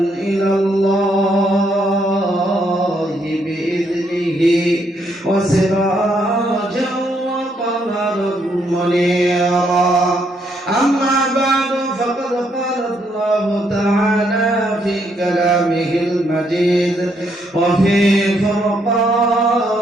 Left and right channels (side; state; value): both; normal; correlation 0.74